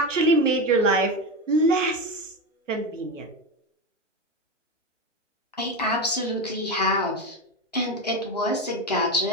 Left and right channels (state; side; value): normal; both; correlation 0.17